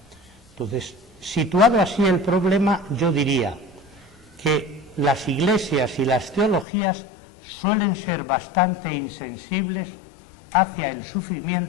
Entonces, situado así el problema, yo diría que las iglesias y las teologías suelen ser bastante insensibles hacia el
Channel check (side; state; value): right; drops out; at 6.7 s